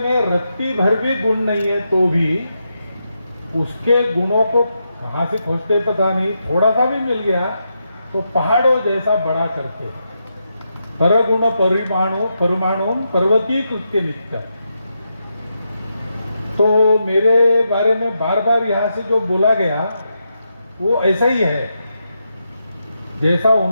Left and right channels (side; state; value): both; inverted; correlation -0.84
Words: रत्ती भर भी गुण नहीं है तो भी उसके गुणों को कहां से खोजते पता नहीं, थोड़ा सा भी मिल गया तो पहाड़ों जैसा बड़ा करते। परगुण परमाणु पर्वतीय कृत्य नित्य। तो मेरे बारे में बार बार यहां से जो बोला गया वो ऐसा ही है, जैसा